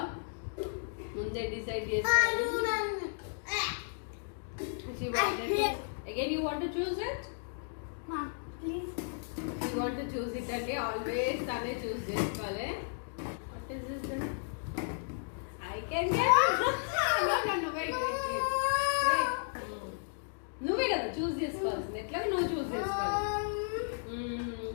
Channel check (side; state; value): right; silent; digital silence